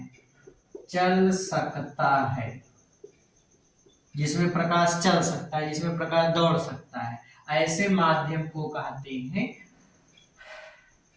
चल सकता है, जिसमें प्रकाश चल सकता है, जिसमें प्रकाश दौड़ सकता है, ऐसे माध्यम को कहते हैं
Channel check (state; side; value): identical; both; correlation 1.00